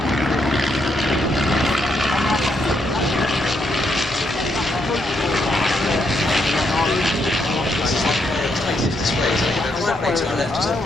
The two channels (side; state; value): both; normal; correlation 0.77